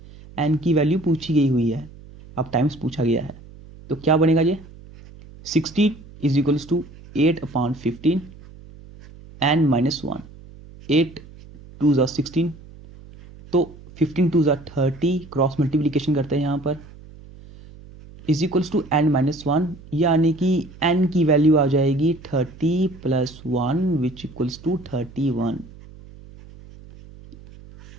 एन की वैल्यू पूछी गई हुई है, अब टाइम्स पूछा गया है। तो क्या बनेगा ये, 60 is equals to 8/15 N minus 1। 8 2 ज़ा 16, तो 15 2 ज़ा 30, क्रॉस मल्टीप्लीकेशन करते हैं यहाँ पर, is equals to N minus 1, यानी कि एन की वैल्यू आ जाएगी 30 प्लस 1 विच इक्वल्स टू 31।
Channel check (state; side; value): noise; right; hum, 20 dB below the sound